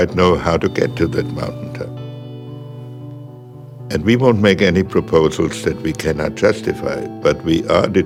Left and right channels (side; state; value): both; identical; correlation 1.00